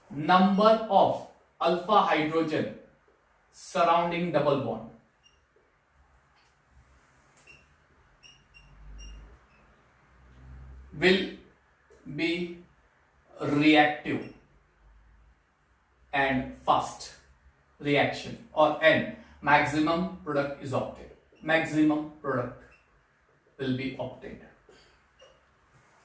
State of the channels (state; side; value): identical; both; correlation 1.00